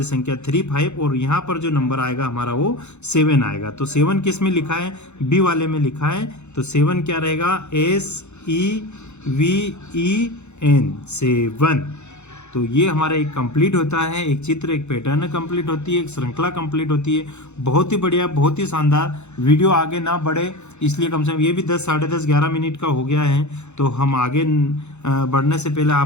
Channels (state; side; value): late; right; 0.82 ms